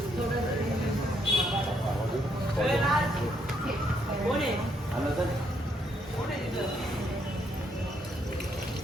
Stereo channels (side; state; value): both; normal; correlation 0.73